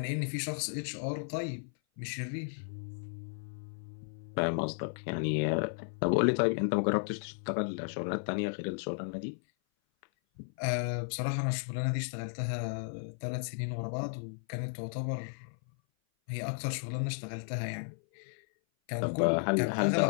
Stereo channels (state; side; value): silent; right; 55 dB below the other